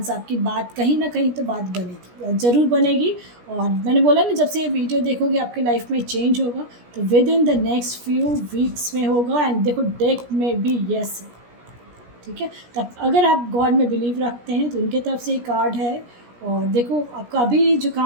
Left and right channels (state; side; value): late; left; 17 ms